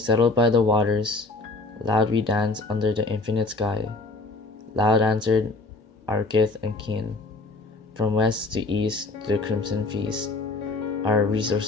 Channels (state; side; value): quieter; right; 3.2 dB